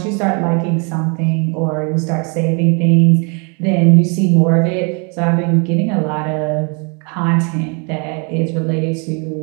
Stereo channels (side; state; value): left; quieter; 34.8 dB